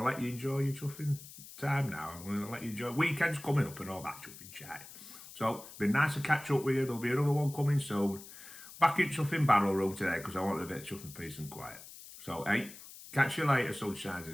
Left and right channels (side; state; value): left; noise; hiss, 16 dB below the sound